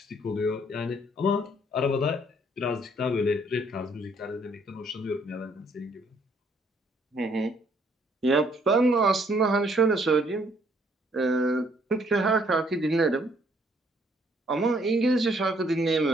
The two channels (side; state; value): both; normal; correlation 0.66